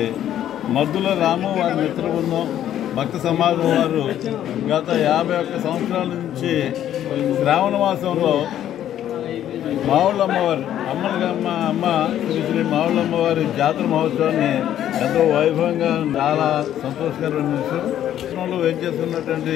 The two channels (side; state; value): right; quieter; 11.2 dB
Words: మద్దుల రాము వారి మిత్ర బృందం భక్త సమాజం వారు గత 51 సంవత్సరాల నుంచి శ్రావణమాసంలో మావుళ్ళమ్మవారి అమ్మ శ్రీ మావుళ్ళమ్మవారి జాతర మహోత్సవాన్ని ఎంతో వైభవంగా చాలా సంతోషకరమైన విషయంలో వేచేస్తున్నటువంటి